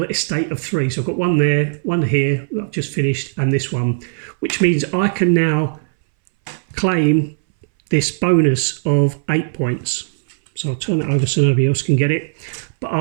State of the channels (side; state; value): left; silent; 63 dB below the other